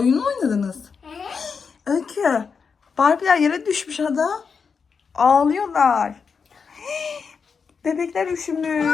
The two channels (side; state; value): right; quieter; 5.7 dB